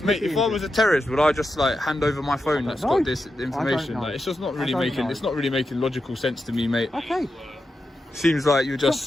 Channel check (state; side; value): normal; both; correlation 0.89